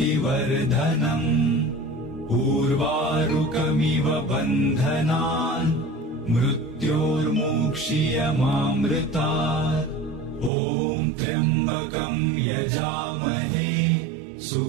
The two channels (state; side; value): drops out; left; at 10.5 s